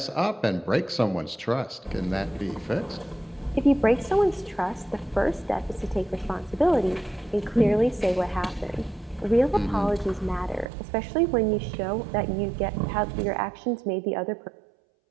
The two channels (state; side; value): drops out; left; at 10.7 s